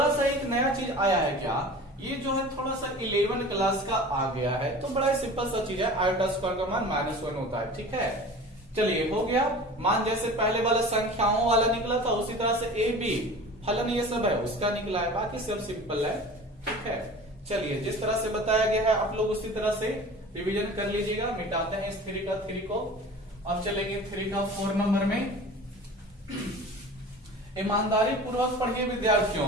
सा एक नया चीज आया है। क्या, ये जो है थोड़ा सा 11 क्लास का आ गया है, तो बड़ा सिंपल सा चीज है, आयोटा स्क्वायर का मान -1 होता है, ठीक है। चलिए हो गया, मान जैसे पहले वाला संख्याओं वाला निकला था, उसी तरह से ए बी फलन ये सब है उसका निकला है, बाकी सब सिंपल है, ठीक है। चलिए, जिस तरह से बताया गया है आप लोग उसी तरह से रिवीजन कर लीजिएगा। मिटाते हैं इस 3 का 3 को। अब चलेंगे 3 का 4 नंबर में। ईमानदारी पूर्वक पढ़िए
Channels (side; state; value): both; normal; correlation 0.39